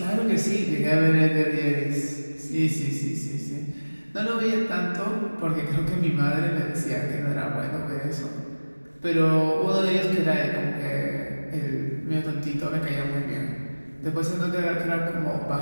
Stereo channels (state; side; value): inverted; both; correlation -1.00